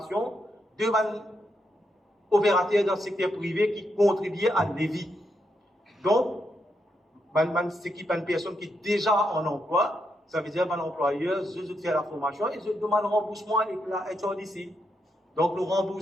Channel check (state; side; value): normal; both; correlation 0.81